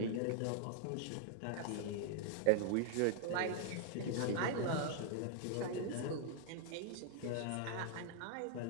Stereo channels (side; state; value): both; different; correlation 0.00